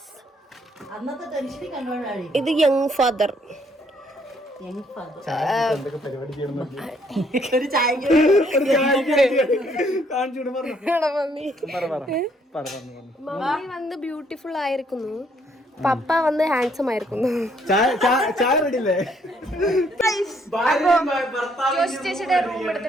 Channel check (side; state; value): both; normal; correlation 0.68